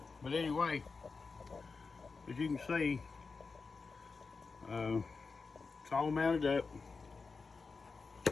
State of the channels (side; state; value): right; quieter; 4.5 dB